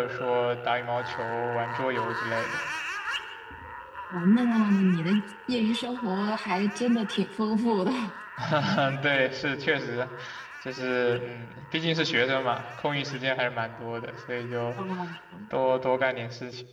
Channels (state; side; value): identical; both; correlation 1.00